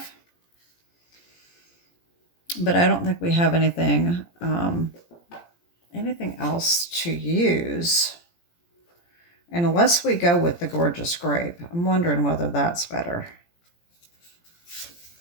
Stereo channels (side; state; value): right; late; 17 ms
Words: But I don't think we have anything else to use. And unless we go with the Gorgeous Grape, I'm wondering whether that's better.